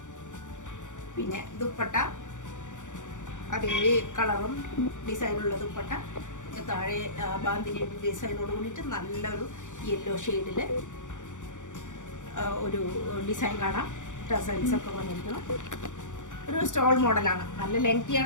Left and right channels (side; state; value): right; late; 0.86 ms